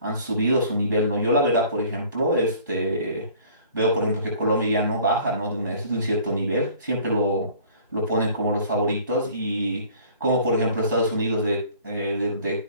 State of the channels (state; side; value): inverted; both; correlation -0.52